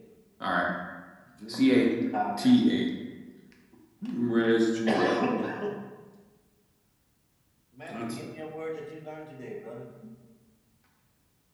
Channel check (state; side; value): identical; both; correlation 1.00